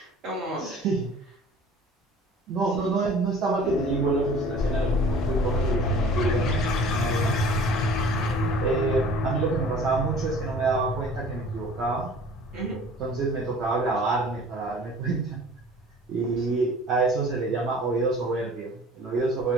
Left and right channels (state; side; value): normal; both; correlation 0.47